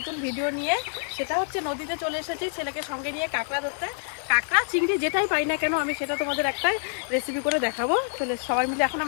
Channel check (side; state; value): right; silent; 60 dB below the other